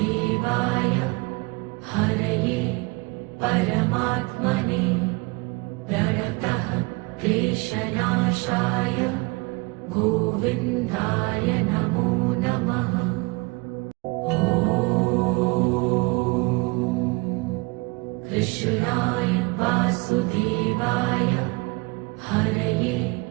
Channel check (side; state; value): left; quieter; 26.3 dB